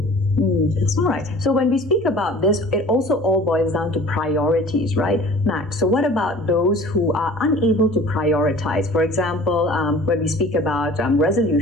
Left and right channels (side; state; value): both; normal; correlation 0.45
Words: All right. So when we speak about this, it also all boils down to priorities, right, Max? So what about those who are unable to prioritize? For example, when we speak about